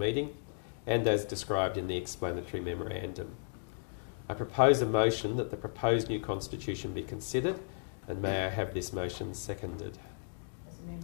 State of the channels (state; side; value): silent; right; digital silence